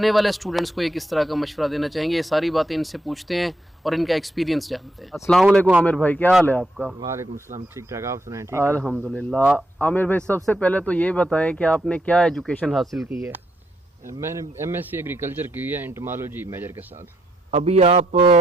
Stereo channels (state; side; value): normal; both; correlation 0.78